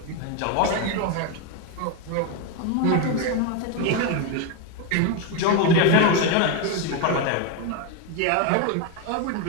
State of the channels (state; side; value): different; both; correlation 0.02